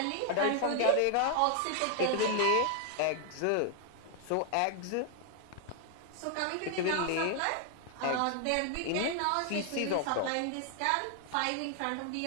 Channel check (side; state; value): both; different; correlation 0.00